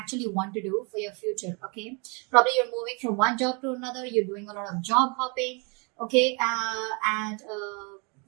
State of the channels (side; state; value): left; quieter; 32.5 dB